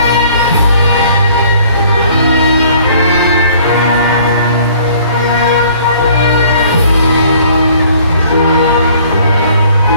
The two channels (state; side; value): inverted; both; correlation -0.57